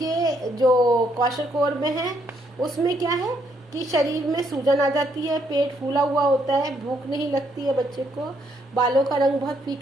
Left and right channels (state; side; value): normal; both; correlation 0.72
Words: जो क्वाशिकोर में है उसमें क्या है कि शरीर में सूजन आ जाती है, पेट फूला हुआ होता है, भूख नहीं लगती है बच्चे को, बालों का रंग बहुत